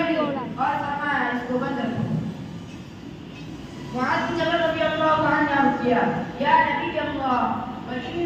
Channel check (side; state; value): both; identical; correlation 1.00